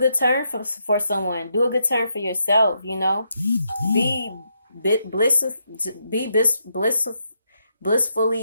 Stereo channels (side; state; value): both; inverted; correlation -0.80